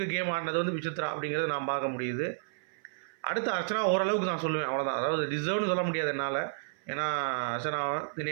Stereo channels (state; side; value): silent; left; 56 dB below the other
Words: கேம் ஆடினது வந்து விசித்ரா அப்படிங்கிறது நான் பார்க்க முடியுது. அடுத்து அர்ச்சனா ஓரளவுக்கு நான் சொல்லுவேன், அவ்வளோதான். அதாவது டிசர்வ்னு சொல்ல முடியாது என்னால். ஏன்னா அர்ச்சனா,